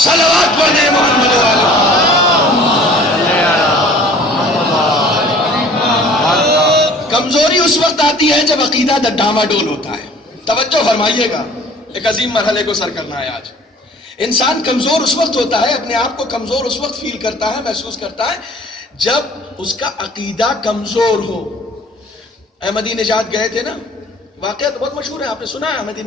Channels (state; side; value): normal; both; correlation 0.50